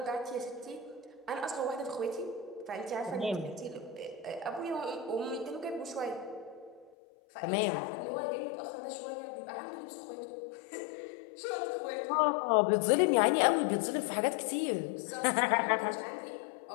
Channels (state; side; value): drops out; right; at 6.9 s